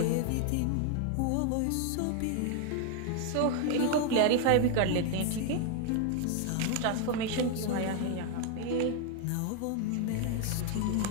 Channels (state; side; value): different; both; correlation 0.00